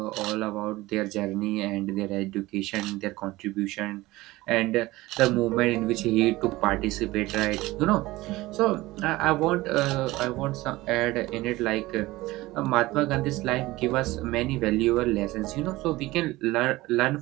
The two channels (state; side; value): quieter; left; 19.0 dB